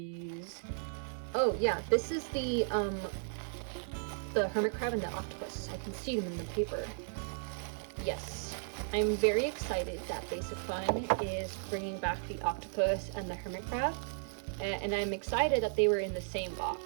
Oh yeah, this is the hermit crab and the octopus. I can see them in the paper. Yes, I'm very excited that Basic Fun is bringing back the octopus and the hermit crab, and I'm excited that they were in the same box.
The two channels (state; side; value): silent; left; 54 dB below the other